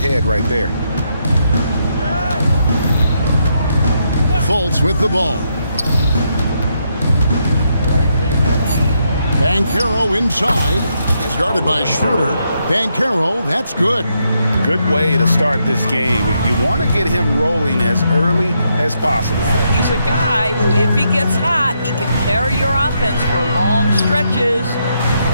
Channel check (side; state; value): both; inverted; correlation -0.79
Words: right there. Fultz with the ball. Banchero inside. He's guarded by Schroeder. Banchero, that's good. Good way to start this game. You want to get him rolling as early as possible. He's a guy who, if he gets hot, he can carry your offense for long stretches.